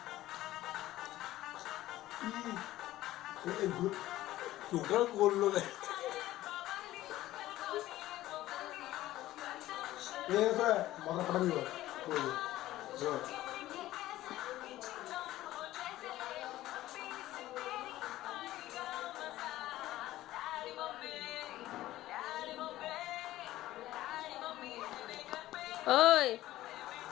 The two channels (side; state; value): right; quieter; 15.3 dB